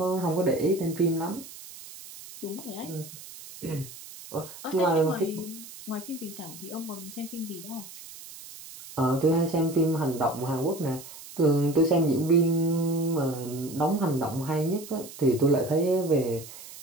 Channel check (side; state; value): right; noise; hiss, 15 dB below the sound